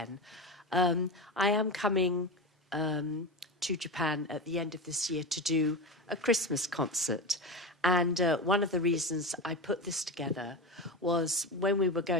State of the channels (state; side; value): normal; both; correlation 0.22